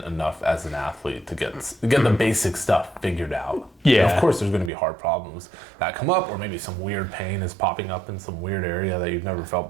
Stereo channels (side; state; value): left; drops out; at 4.7 s